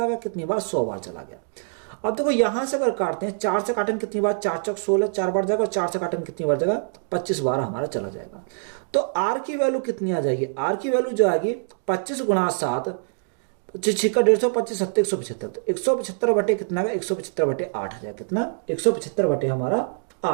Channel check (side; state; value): left; silent; digital silence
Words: गया, कितनी बार 100 बार चला गया। अब देखो यहां से अगर काटते हैं 4 से काटेंगे कितनी बार, 4 चौक 16 4 बार जाएगा, और 4 से काटेंगे कितनी बार जाएगा 25 बार हमारा चला जाएगा। तो आर की वैल्यू कितनी आ जाएगी, आर की वैल्यू जो आएगी 25 गुणा 7 छिक्का 150 25 7 175, तो 175 बटे कितना का 175 बटे 8 आ जाएगा, कितना 175 बटे हमारा 8